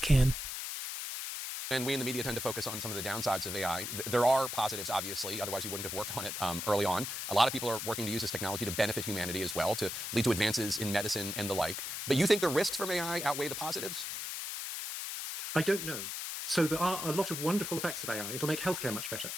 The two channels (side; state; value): left; noise; hiss, 5 dB below the sound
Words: And we in the media tend to focus on some of the downsides of AI. There are positives, obviously, otherwise you wouldn't have worked on it early on. A lot of people are working to use this technology to benefit humanity as well, to lead to advances in medicine and the like. But you think the risks from AI outweigh the positives? I don't know. So there are a lot of wonderful effects of AI. It'll make healthcare much better.